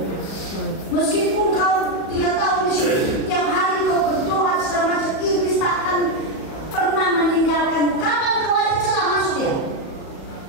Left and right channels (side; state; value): right; late; 37 ms